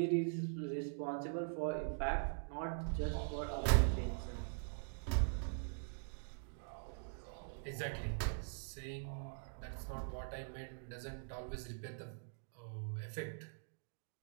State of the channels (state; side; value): silent; left; digital silence